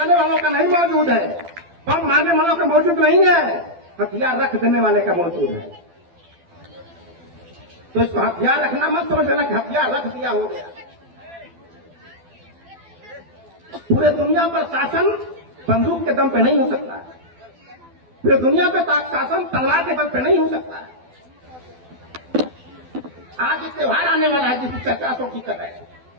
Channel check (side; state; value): left; late; 12 ms